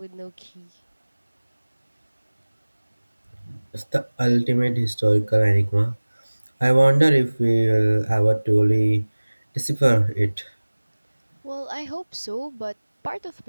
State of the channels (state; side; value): inverted; both; correlation -1.00